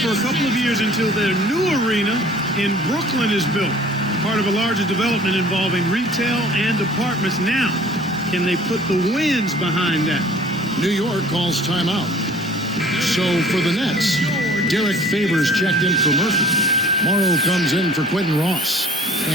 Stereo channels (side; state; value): both; normal; correlation 0.50